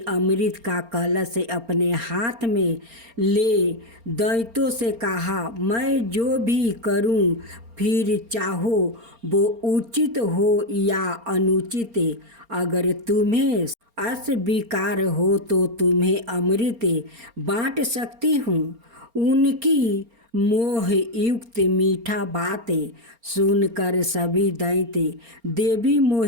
अमृत का कलश अपने हाथ में ले दैत्यों से कहा, मैं जो भी करूं, फिर चाहो वो उचित हो या अनुचित, अगर तुम्हें अस्वीकार हो तो तुम्हें अमृत बांट सकती हूँ। उनकी मोह युक्त मीठा बातें सुनकर सभी दैत्य देवी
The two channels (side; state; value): left; late; 4.3 ms